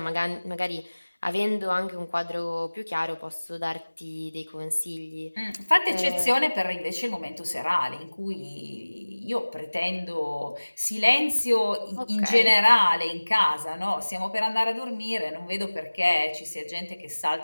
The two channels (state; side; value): inverted; both; correlation -1.00